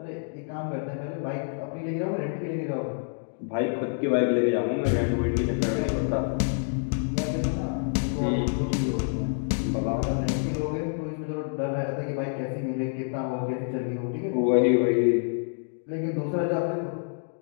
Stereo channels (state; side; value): silent; right; digital silence